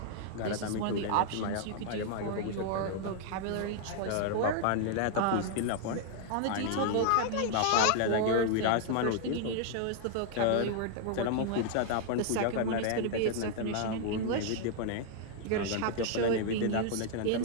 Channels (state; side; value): different; both; correlation 0.00